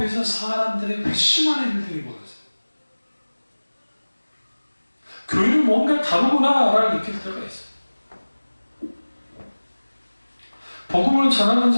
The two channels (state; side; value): inverted; both; correlation -1.00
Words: 사람들의 회심하는 일들이 벌어져요. 교회는 뭔가 다르구나라를 느낄 때가 있어요. 복음을 전하는